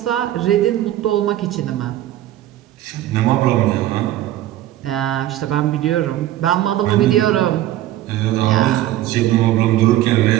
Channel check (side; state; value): left; quieter; 13.7 dB